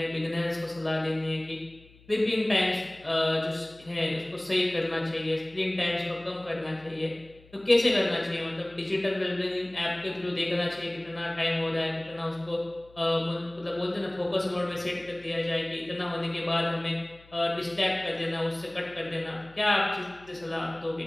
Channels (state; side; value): noise; left; hum, 26 dB below the sound